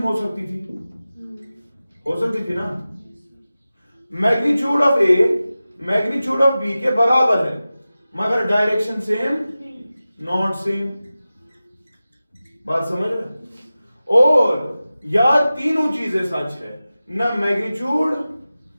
हो सकती थी ना। Magnitude of A magnitude of B के बराबर है मगर डायरेक्शन सेम नॉट सेम। बात समझ रहे? और या तीनों चीजें सच है, ना मैग्नीट्यूड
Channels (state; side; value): inverted; both; correlation -0.95